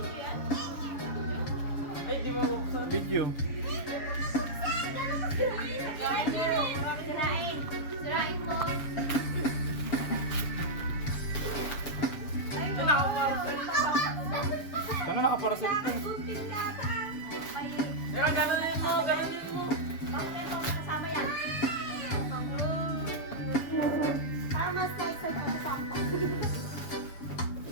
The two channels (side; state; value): right; late; 6.9 ms